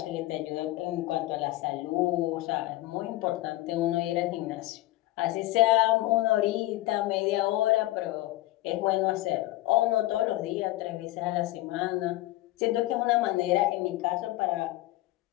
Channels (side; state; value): right; quieter; 17.4 dB